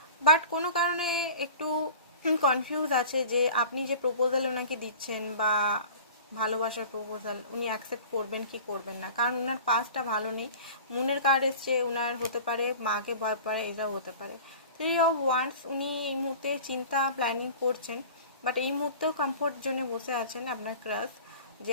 বাট কোনো কারণে একটু কনফিউজ আছে যে আপনি যে প্রপোজাল ওনাকে দিচ্ছেন বা ভালোবাসার প্রপোজাল, উনি অ্যাকসেপ্ট করবেন কি করবেন না। কারণ ওনার পাসটা ভালো নেই। মুনের কার্ড এসছে, ওনার হতে পারে মাকে ভয় পারে, এটাও হতে পারে। 3 of Wands, উনি এই মুহূর্তে চিন্তা প্ল্যানিং করছেন, বাট এই মুহূর্তেও কমফোর্ট জোনে বসে আছেন আপনার ক্রাশ, যে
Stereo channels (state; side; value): inverted; both; correlation -0.41